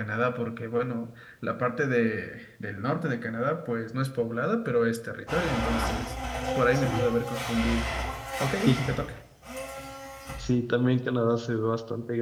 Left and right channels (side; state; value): both; identical; correlation 1.00